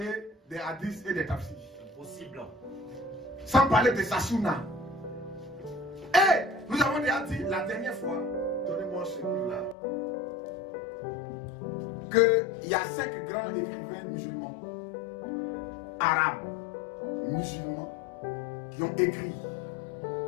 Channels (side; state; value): right; drops out; at 9.8 s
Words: des hadiths et des tafsirs. Impossible. Sans parler de sa sunna. Et nous avons déjà dit la dernière fois, donnez-moi ce livre-là, qu'il y a 5 grands écrivains musulmans, arabes, musulmans, qui ont écrit,